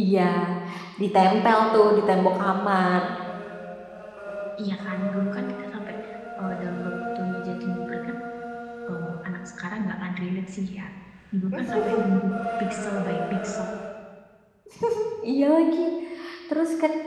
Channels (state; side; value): identical; both; correlation 1.00